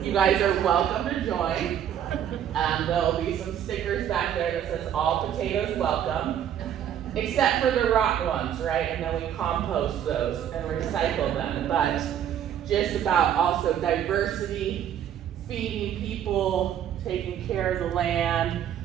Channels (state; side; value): quieter; left; 9.8 dB